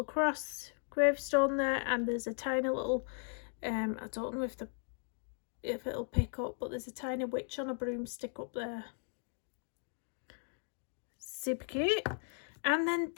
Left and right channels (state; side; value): silent; right; 53 dB below the other